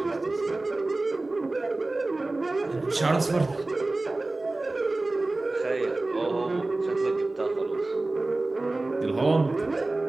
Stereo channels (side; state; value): left; quieter; 3.0 dB